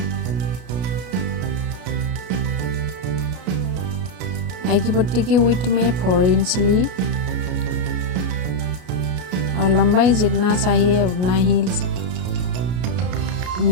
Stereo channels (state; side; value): late; left; 33 ms